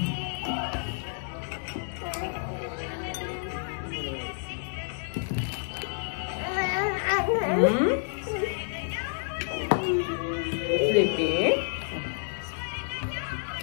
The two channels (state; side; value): silent; right; digital silence